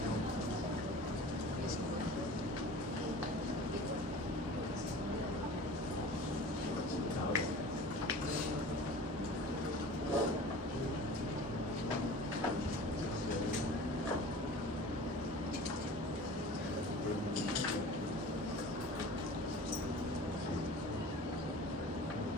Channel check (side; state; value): both; normal; correlation 0.40